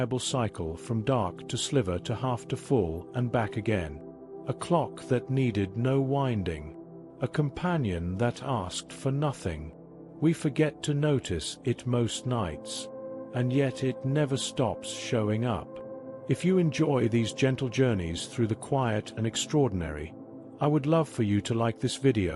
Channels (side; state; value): both; identical; correlation 1.00